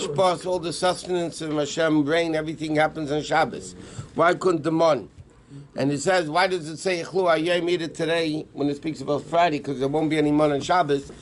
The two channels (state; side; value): identical; both; correlation 1.00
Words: all the sustenance of Hashem, rain, everything happens on Shabbos? Why couldn't the month? And it says, why does it say Echlu Ayem, eat it today, when it speaks about Friday, because there won't be any month on Shabbos?